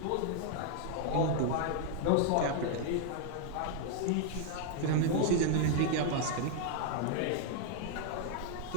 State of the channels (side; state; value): both; different; correlation 0.00